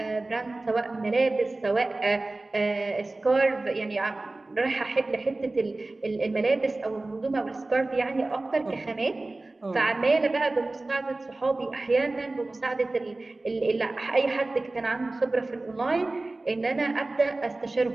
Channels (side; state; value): left; quieter; 3.0 dB